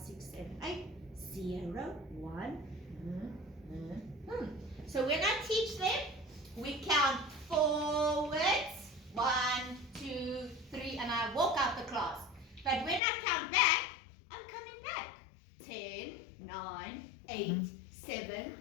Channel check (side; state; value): right; drops out; at 13.0 s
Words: 7, 8. 0, 1. So when I teach them, we count forwards. 1, 2, 3, and I walk out the class. But when I count back, I'm coming back. 10, 9, 8, 7,